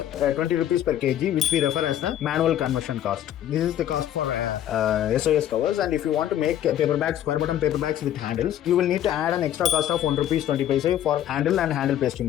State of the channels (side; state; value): right; quieter; 11.4 dB